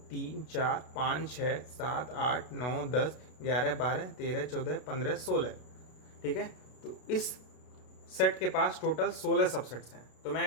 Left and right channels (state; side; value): late; right; 32 ms